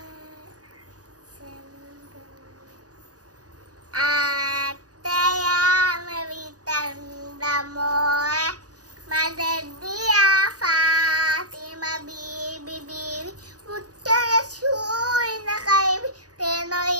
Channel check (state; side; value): late; left; 0.67 ms